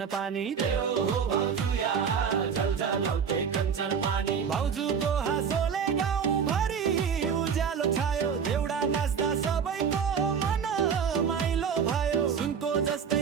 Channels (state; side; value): quieter; left; 6.9 dB